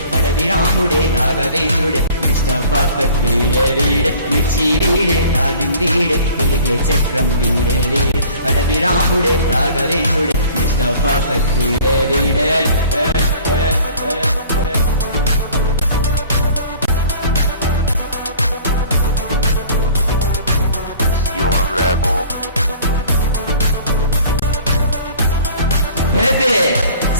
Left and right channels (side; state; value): both; inverted; correlation -0.49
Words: అడవి రాముడే రాఘవేంద్రుడే మిస్టర్ పర్ఫెక్ట్ వీడే వీడే మిర్చి వీడే డార్లింగ్ వీడే తిరిగే చక్రం వీడే వీడే అడవి రాముడే రాఘవేంద్రుడే మిస్టర్ పర్ఫెక్ట్ వీడే వీడే You're a rebel. Baby,